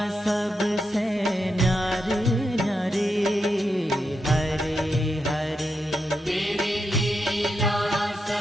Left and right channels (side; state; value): both; normal; correlation 0.85